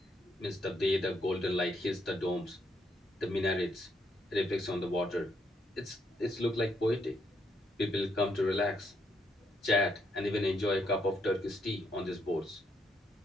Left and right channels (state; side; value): normal; both; correlation 0.75